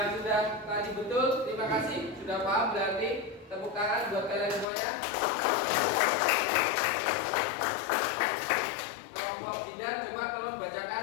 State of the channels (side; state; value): right; drops out; at 4.7 s